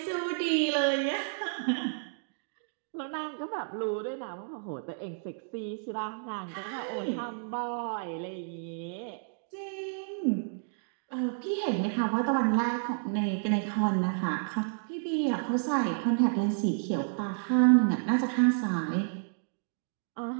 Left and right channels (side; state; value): left; silent; digital silence